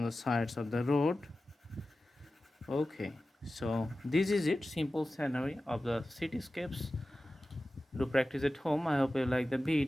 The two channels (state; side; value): normal; both; correlation 0.95